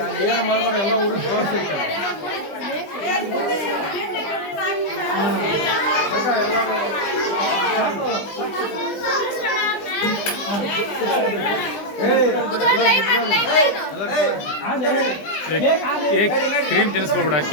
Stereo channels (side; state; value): right; late; 20 ms